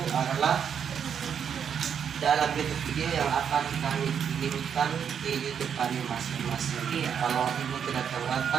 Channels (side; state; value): left; quieter; 7.8 dB